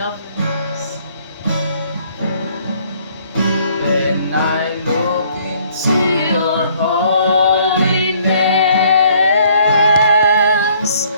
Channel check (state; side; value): inverted; both; correlation -0.62